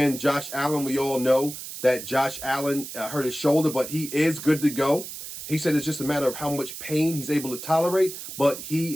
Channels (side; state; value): right; noise; hiss, 10 dB below the sound